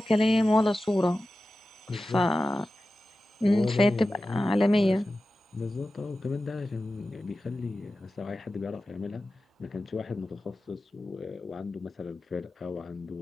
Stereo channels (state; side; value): normal; both; correlation 0.94